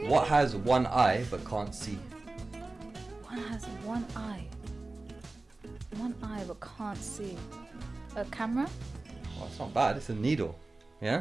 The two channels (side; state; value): left; quieter; 3.2 dB